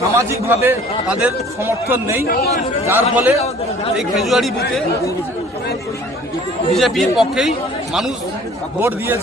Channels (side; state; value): both; normal; correlation 0.51